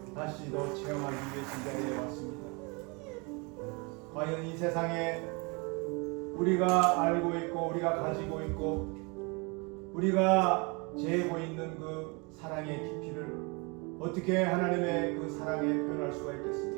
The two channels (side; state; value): left; quieter; 29.9 dB